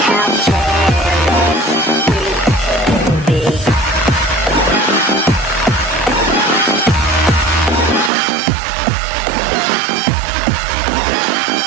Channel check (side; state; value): left; drops out; at 8.1 s